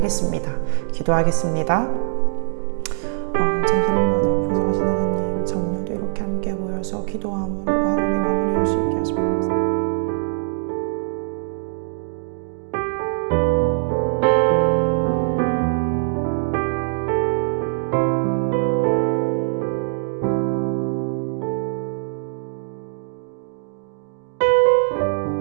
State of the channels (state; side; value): silent; left; digital silence